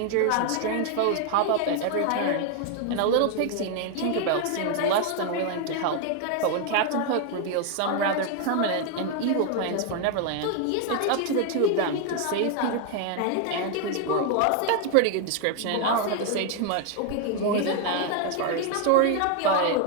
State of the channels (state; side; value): different; both; correlation 0.00